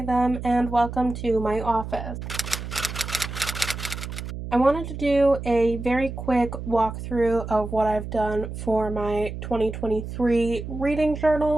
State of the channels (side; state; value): right; noise; hum, 8 dB below the sound